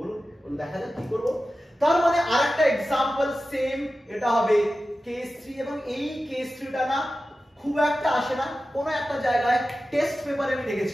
দেখা যাক কি করব। তার মানে আরেকটা एग्जांपल সেম, এটা হবে কেস 3, এবং এই কেস 3টা না খুব একটা আসে না, কোন একটা জায়গায় টেস্ট পেপারে আমি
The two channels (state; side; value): normal; both; correlation 0.94